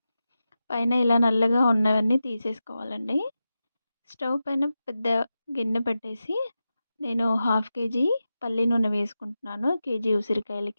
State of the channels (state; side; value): inverted; both; correlation -0.92